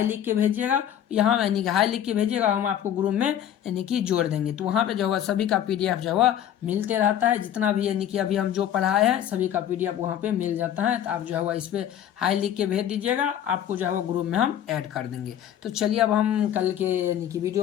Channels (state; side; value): quieter; right; 10.4 dB